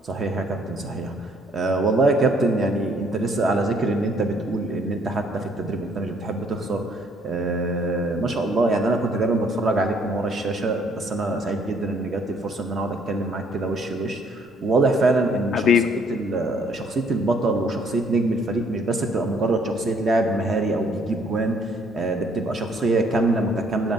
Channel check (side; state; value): both; normal; correlation 0.64